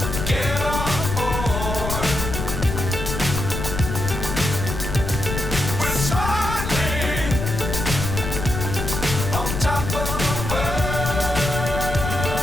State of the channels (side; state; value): left; noise; rumble, 4 dB below the sound